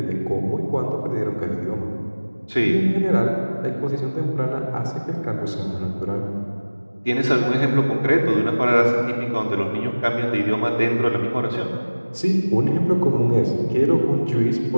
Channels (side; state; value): both; inverted; correlation -1.00